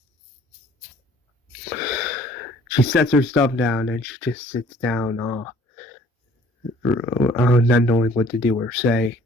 She sets her stuff down and she just sits down, not knowing what to do or say.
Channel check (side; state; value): both; normal; correlation 0.55